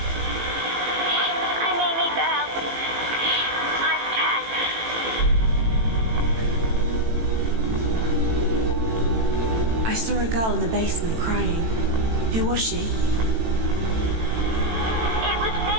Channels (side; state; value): left; late; 18 ms